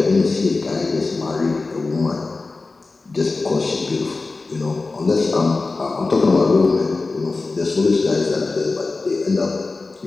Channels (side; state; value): right; quieter; 3.7 dB